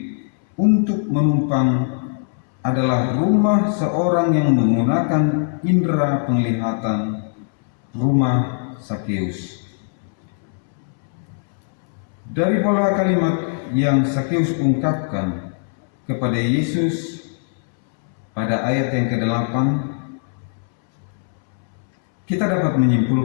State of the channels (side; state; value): right; silent; 65 dB below the other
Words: untuk menumpang adalah rumah seorang yang menggunakan indera penglihatan, rumah Sakeus. Dari pola kalimat yang Sakeus ungkapkan kepada Yesus pada ayat yang ke-8, kita dapat